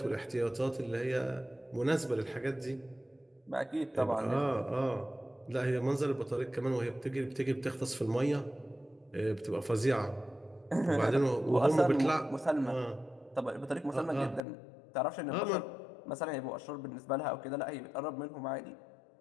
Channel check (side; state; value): right; drops out; at 14.4 s